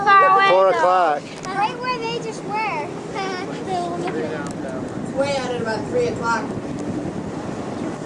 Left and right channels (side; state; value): both; identical; correlation 1.00